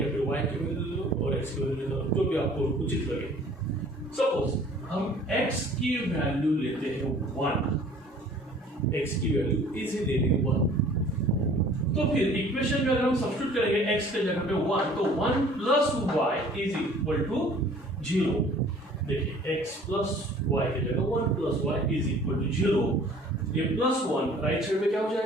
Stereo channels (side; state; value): both; normal; correlation 0.51